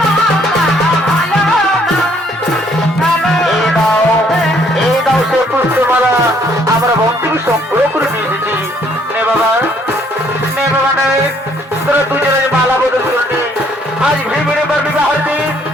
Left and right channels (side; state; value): both; normal; correlation 0.65